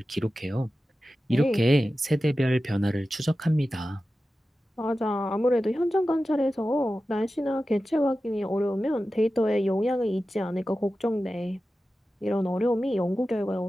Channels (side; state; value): both; normal; correlation 0.94